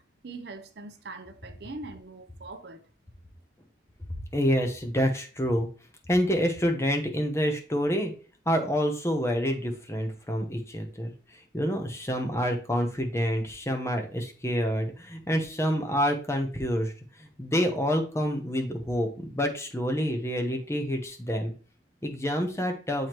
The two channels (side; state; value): both; normal; correlation 0.73